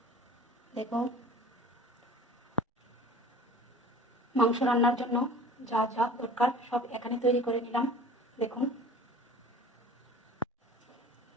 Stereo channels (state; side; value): normal; both; correlation 0.44